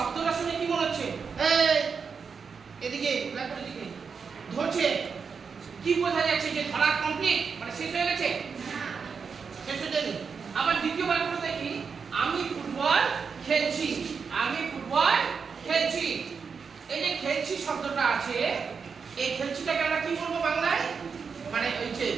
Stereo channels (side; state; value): left; quieter; 5.7 dB